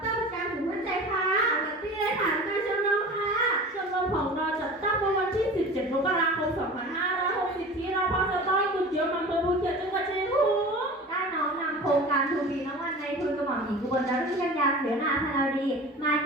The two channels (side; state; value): both; normal; correlation 0.37